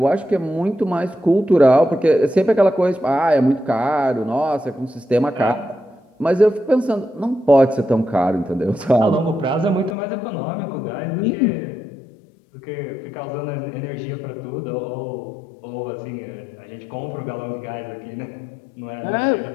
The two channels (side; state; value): right; drops out; at 10.0 s